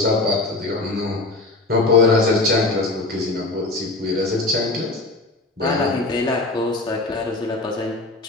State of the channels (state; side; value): quieter; right; 3.1 dB